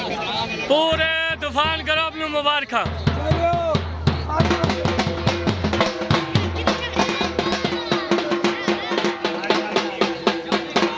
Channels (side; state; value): both; identical; correlation 1.00